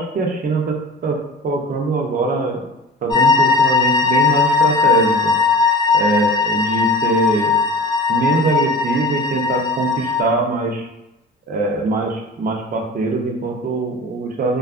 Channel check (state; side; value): normal; both; correlation 0.37